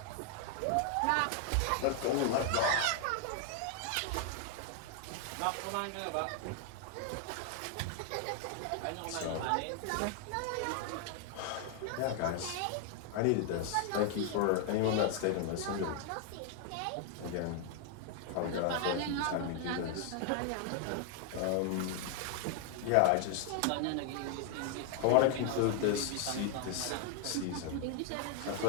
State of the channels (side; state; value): both; different; correlation 0.00